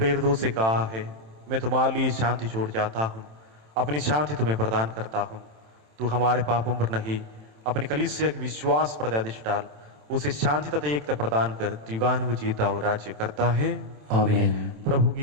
से कहा है, मैं तुम्हारे लिए शांति छोड़ जाता हूँ, अपनी शांति तुम्हें प्रदान करता हूँ। तू हमारे पापों पर नहीं, अपने कलीसिया के विश्वास पर दृष्टि डाल, उसे शांति तथा एकता प्रदान कर युगानुयुग जीता और राज्य करता है। आमीन। प्रभु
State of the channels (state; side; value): late; left; 27 ms